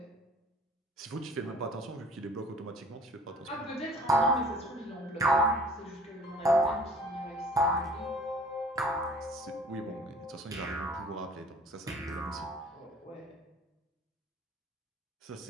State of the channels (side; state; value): both; normal; correlation 0.50